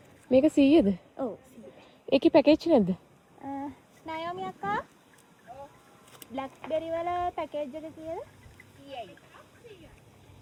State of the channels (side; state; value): both; identical; correlation 1.00